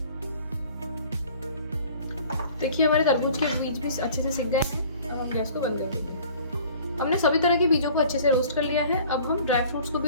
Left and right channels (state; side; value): inverted; both; correlation -0.49